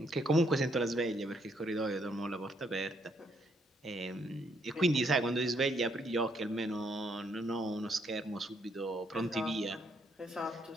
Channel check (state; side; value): normal; both; correlation 0.72